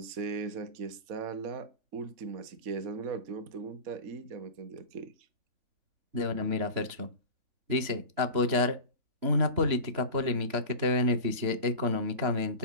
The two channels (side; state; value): left; late; 3.0 ms